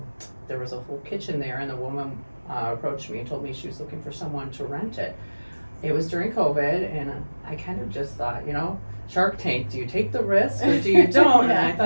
there was a full kitchen there, and the woman approached me and told me she was looking for someone to rent it. It was during COVID, and I kind of just thought, Shark Tank, do you take the risk or do you don't? Yeah. And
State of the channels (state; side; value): inverted; both; correlation -1.00